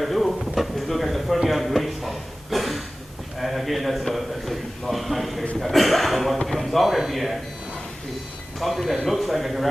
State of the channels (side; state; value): both; normal; correlation 0.96